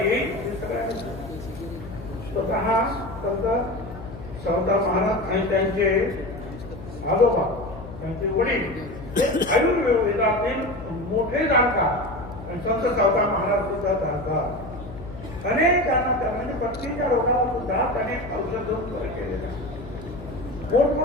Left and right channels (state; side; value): noise; left; hum, 13 dB below the sound